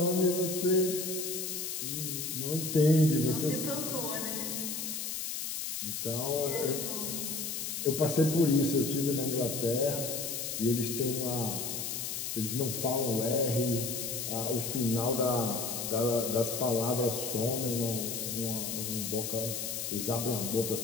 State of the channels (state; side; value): noise; left; hiss, 4 dB below the sound